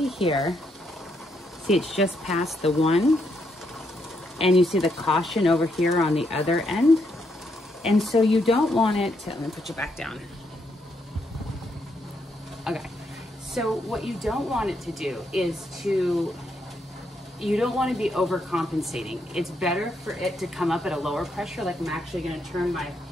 here, see it's just past the 1, and you see the caution over here on the other end. And so you don't want it to, let me put you back down. Okay, so what you don't want it to do is you don't want to be overcompensating. It's better for it to come up at a lower pressure. Like I'm actually going to turn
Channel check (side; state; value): both; normal; correlation 0.77